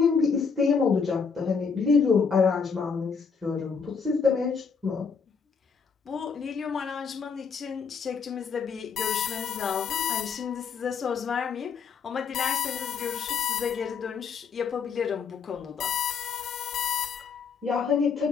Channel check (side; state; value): right; quieter; 5.7 dB